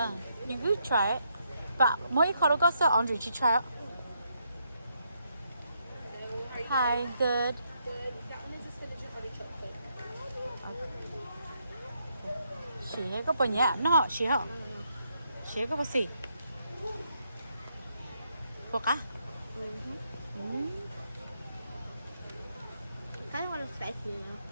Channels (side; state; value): both; inverted; correlation -0.77